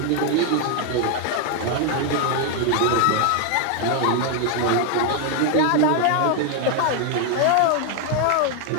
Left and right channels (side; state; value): both; different; correlation 0.01